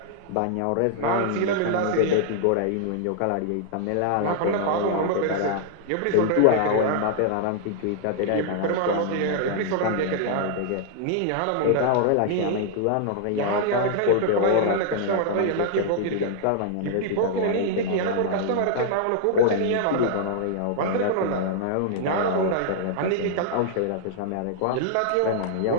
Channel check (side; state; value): both; different; correlation -0.01